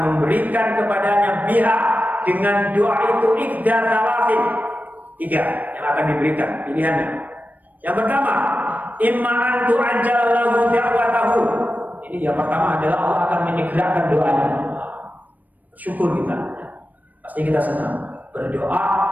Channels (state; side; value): late; left; 0.081 ms